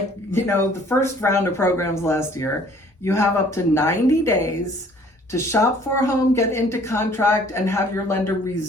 first round of programs last year. You have up to 90 days to shop for a home, get into contract, and have your lender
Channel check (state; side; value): normal; both; correlation 0.56